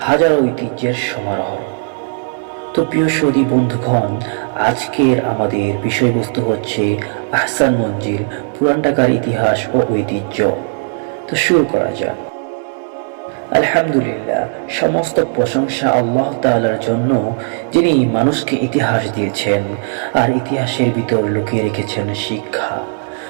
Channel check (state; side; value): silent; left; 67 dB below the other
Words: হাজারো ঐতিহ্যের সমারোহ। তো প্রিয় সৌদি বন্ধুগণ, আজকের আমাদের বিষয়বস্তু হচ্ছে আহসান মঞ্জিল, পুরান ঢাকার ইতিহাস ও ঐতিহ্য। তো শুরু করা যাক। আলহামদুলিল্লাহ, সমস্ত প্রশংসা আল্লাহ তাআলার জন্য, যিনি মানুষকে ইতিহাস দিয়েছেন আর ইতিহাসের ভিতর লুকিয়ে রেখেছেন শিক্ষা।